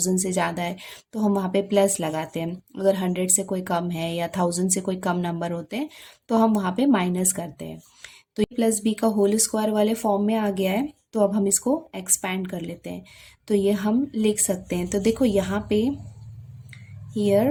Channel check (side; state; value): both; identical; correlation 1.00